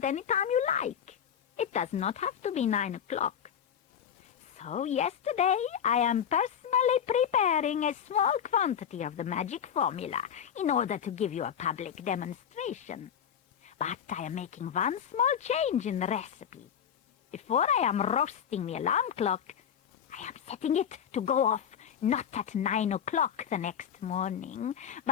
any time you like. It does not have to be 9 o'clock. So yesterday I am personally preparing a small quantity of the magic formula in order to give you a public demonstration. But I am making one small change in the recipe. Before I am roasting the alarm clock, I am setting it to go off not at 9 o'clock the next morning,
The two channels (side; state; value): right; quieter; 8.6 dB